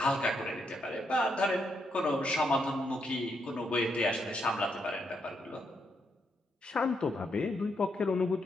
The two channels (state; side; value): normal; both; correlation 0.79